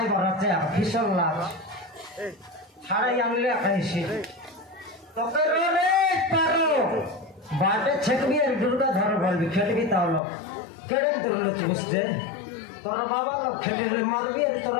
বাড়াচ্ছে আর ফিসল লাচ ছাড়াই আনলে খাইছি তোকে রে পারো বাটে ছেকবি আর দুর্গা ধর বলবি খেলবি তাহলে কেড়ে ধরলে বুঝতে তোরা বাবা লোক খেলিলে মারবি আর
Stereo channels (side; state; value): right; drops out; at 10.2 s